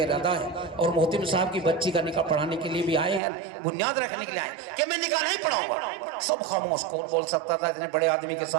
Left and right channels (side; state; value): left; drops out; at 3.2 s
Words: ارادہ ہے، اور محتم صاحب کی بچی کا نکاح پڑھانے کے لیے بھی آئے ہیں، بنیاد رکھنے کے لیے آئے ہیں کہ میں نکاح نہیں پڑھاؤں گا۔ سب خاموش، کون بول سکتا تھا اتنے بڑے آدمی کے